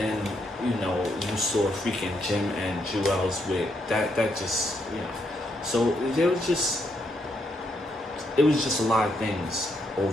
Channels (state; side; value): normal; both; correlation 0.77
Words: you know, you saw freaking Jim and Juelz with that just, you know. So it was just a lot of things